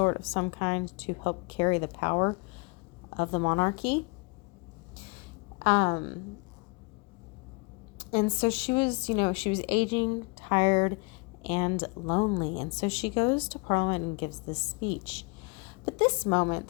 of some kind to help carry the power of the monarchy. And so she was aging, tired, and lonely. And so she goes to Parliament and gives this speech. But this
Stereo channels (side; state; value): right; quieter; 30.1 dB